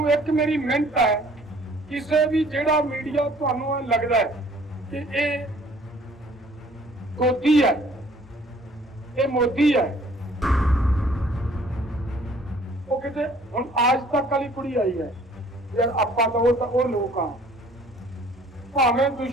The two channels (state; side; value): normal; both; correlation 0.56